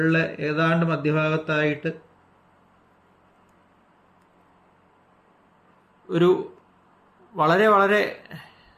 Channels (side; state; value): both; identical; correlation 1.00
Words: ഏതാണ്ട് മധ്യഭാഗത്തായിട്ട് ഒരു വളരെ വളരെ